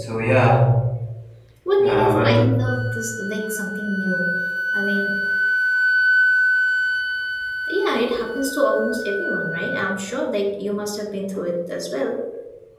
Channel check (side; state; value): both; identical; correlation 1.00